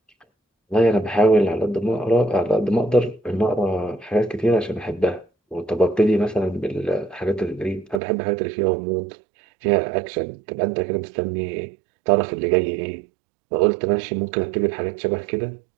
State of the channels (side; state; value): left; drops out; at 8.0 s